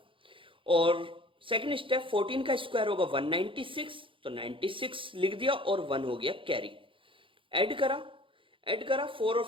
और सेकंड स्टेप 14 का स्क्वायर होगा 196, तो 96 लिख दिया और 1 हो गया कैरी। ऐड करा, ऐड करा 4 और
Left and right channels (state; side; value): late; left; 0.25 ms